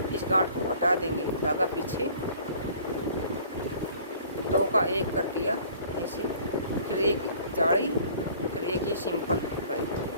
इस गांठ को हटा देंगे, धागा पीछे, 2 का 1 कर दिया ऐसे, फिर एक जाली, फिर एक ये सिंपल फली,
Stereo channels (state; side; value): inverted; both; correlation -0.52